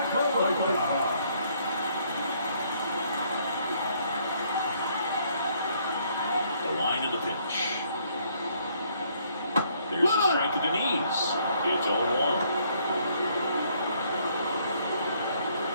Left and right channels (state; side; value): inverted; both; correlation -0.67